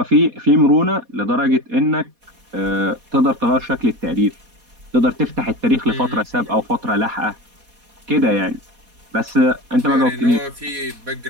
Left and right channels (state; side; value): late; left; 4.2 ms